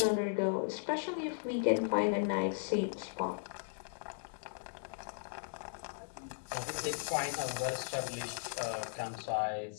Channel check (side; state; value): right; silent; 53 dB below the other